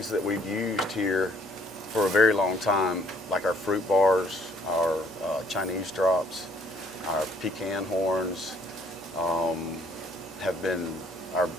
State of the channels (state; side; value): normal; both; correlation 0.62